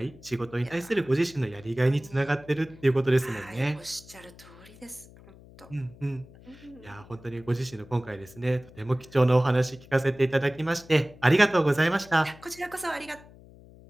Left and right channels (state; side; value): noise; left; hum, 22 dB below the sound